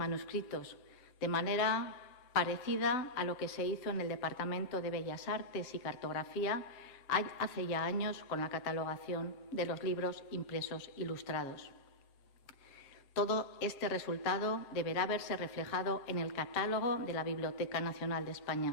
de manera parecida a lo que se hizo en el Departamento de Bellas Artes y Cartografía hace ya años con la catalogación de los libros impresos ilustrados. Todo este resultado deberá verse reflejado en el catálogo de la Biblioteca Nacional de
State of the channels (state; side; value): late; right; 8.0 ms